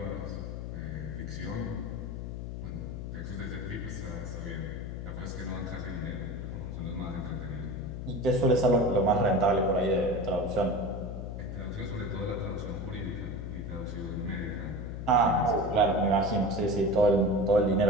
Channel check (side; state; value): left; noise; hum, 6 dB below the sound